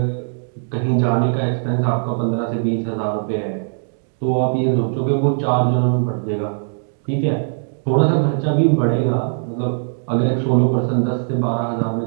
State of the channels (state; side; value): silent; left; digital silence